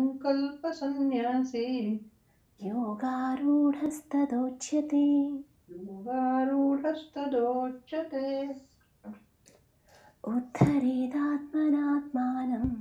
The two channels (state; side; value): identical; both; correlation 1.00